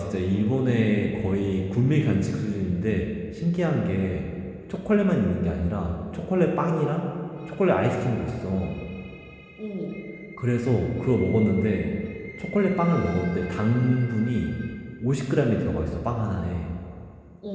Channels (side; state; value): both; identical; correlation 1.00